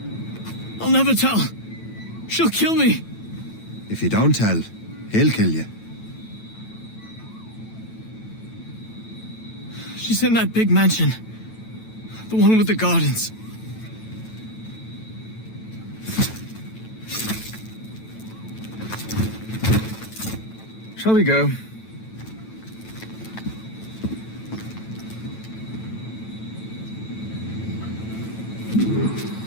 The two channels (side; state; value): right; late; 9.1 ms